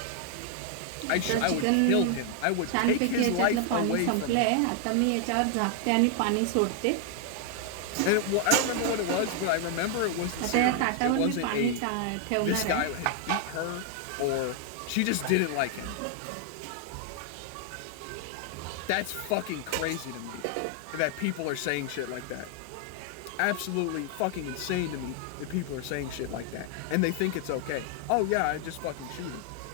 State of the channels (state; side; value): different; both; correlation 0.00